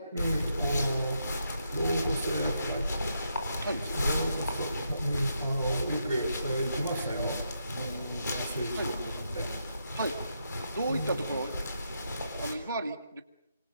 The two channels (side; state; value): both; inverted; correlation -0.81